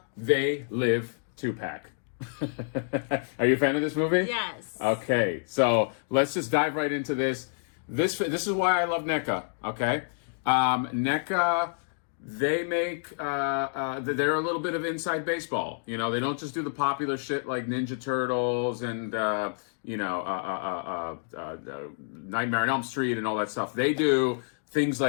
They Live 2-pack. Are you a fan of this movie? Yes. Okay, so let's just dive right into this. This is why I love NECA, okay? NECA, they make, they're a little bit of inside baseball. You know, they don't just do the popular shit like Ninja Turtles and, Nightmare on Elm Street and all that stuff. They do things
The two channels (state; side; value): silent; right; digital silence